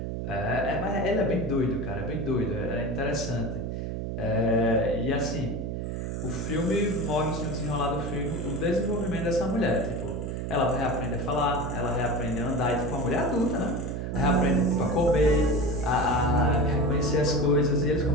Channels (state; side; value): noise; right; hum, 4 dB below the sound